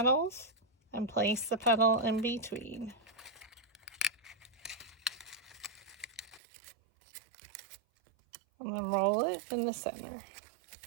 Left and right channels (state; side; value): drops out; left; at 6.4 s